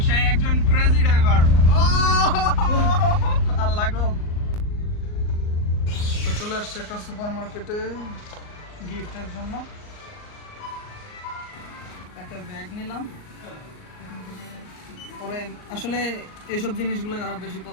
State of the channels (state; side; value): late; right; 38 ms